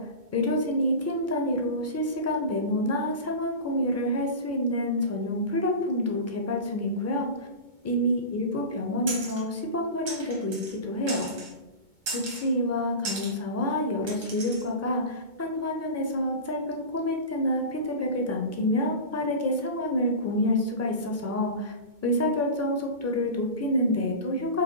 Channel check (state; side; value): late; left; 2.2 ms